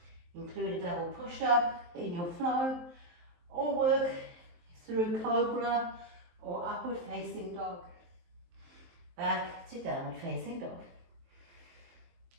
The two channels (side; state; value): left; late; 23 ms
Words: Include a double push-up in your flow. Or work through cobra or upward facing dog. Back to downward facing dog.